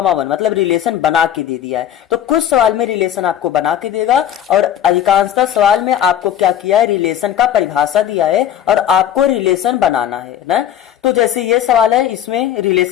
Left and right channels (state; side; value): quieter; right; 10.4 dB